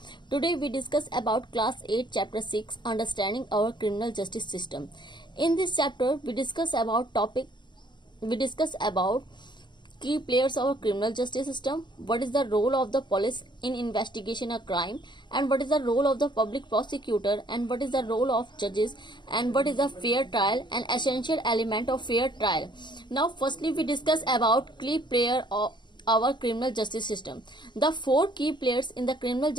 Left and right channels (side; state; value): right; late; 0.22 ms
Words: Today we discuss about class 8 chapter 6 understanding our criminal justice system. In this chapter we discuss about key players of our criminal justice system, what is the role of the police in investigation a crime, and what is the role of the public prosecutor, and what is the role of judges, and what is a fair trial, an essential element of fair trial. Now firstly we discuss about key player of our criminal justice system. The four key players in the criminal